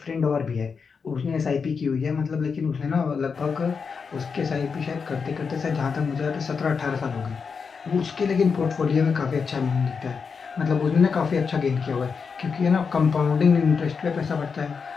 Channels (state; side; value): quieter; right; 5.6 dB